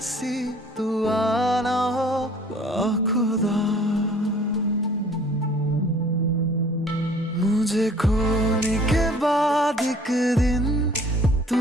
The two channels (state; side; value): normal; both; correlation 0.53